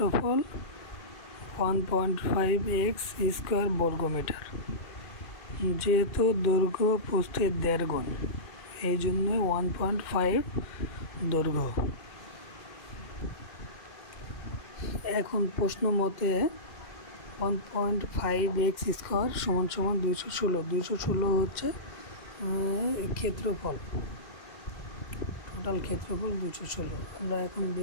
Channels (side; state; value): right; late; 2.4 ms